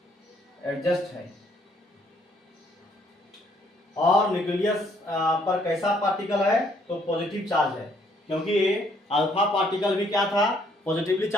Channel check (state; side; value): normal; both; correlation 0.67